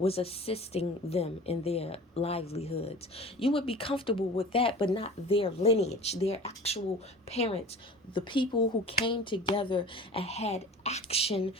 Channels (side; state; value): both; normal; correlation 0.40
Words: assisting them in their livelihoods. You would be comfortable with that, but not their lineage, their actual parents, the people who came together and had action